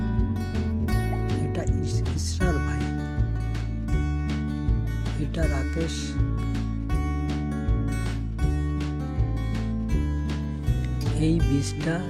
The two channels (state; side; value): identical; both; correlation 1.00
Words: এটা ইসরার ভাই, এটা রাকেশ, এই বীজটা